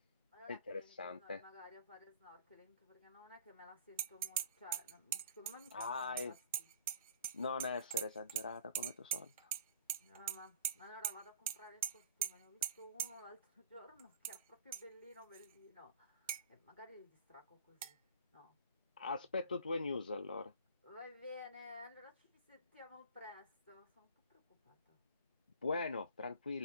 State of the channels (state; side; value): inverted; both; correlation -0.47